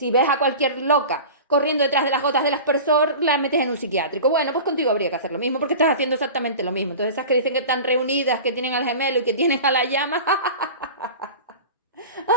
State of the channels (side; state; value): both; inverted; correlation -0.35